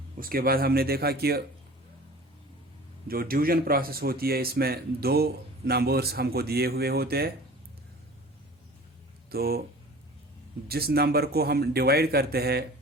उसके बाद हमने देखा कि जो डिवीजन प्रोसेस होती है इसमें दो नंबर्स हमको दिए हुए होते हैं, तो जिस नंबर को हम डिवाइड करते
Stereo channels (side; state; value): both; normal; correlation 0.43